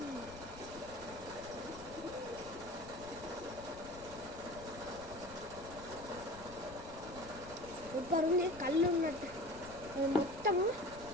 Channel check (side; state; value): left; noise; rumble, 16 dB below the sound